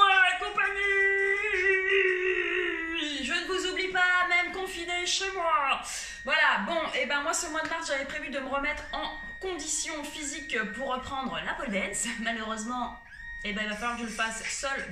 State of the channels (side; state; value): both; identical; correlation 1.00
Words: compagnie! Je ne vous oublie pas, même confiné chez moi. Voilà, bon, et ben moi ce mois de mars, j'avais prévu de me remettre en condition physique pour reprendre la pole dance. Malheureusement, et ben il va falloir que je le fasse seule